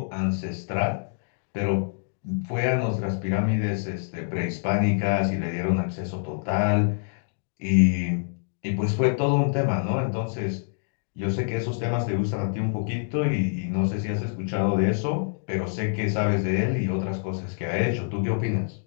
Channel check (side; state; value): right; silent; digital silence